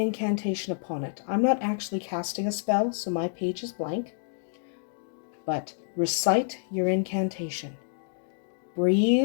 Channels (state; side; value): silent; right; digital silence